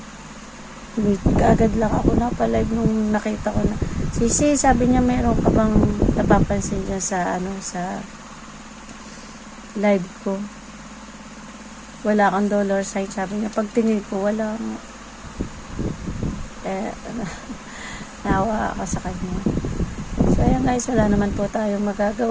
Kaagad lang ako napalive nung nakita ko na Sisi, sabi niya meron ka bang napapansin dyan sa sa live ko, wala kang dollar sign, sabi niya. Pagtingin ko wala nga. Nawa ako sa kanya. So ayan guys, wala naman po tayong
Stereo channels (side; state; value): both; identical; correlation 1.00